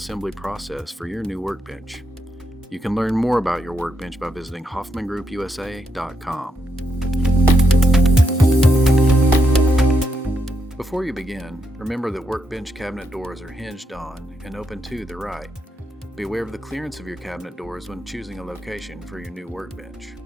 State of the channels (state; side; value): normal; both; correlation 0.81